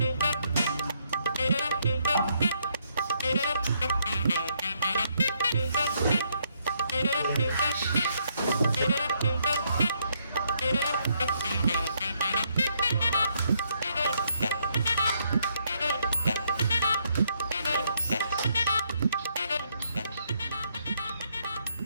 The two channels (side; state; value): both; inverted; correlation -0.73